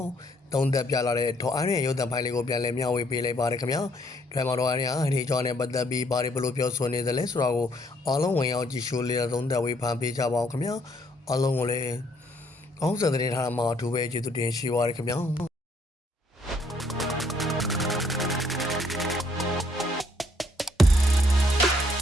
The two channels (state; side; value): normal; both; correlation 0.68